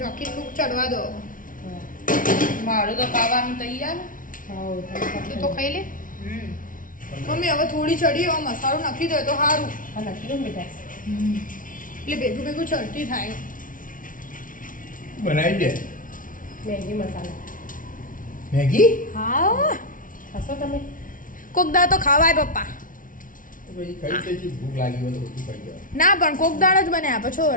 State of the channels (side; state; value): right; late; 0.39 ms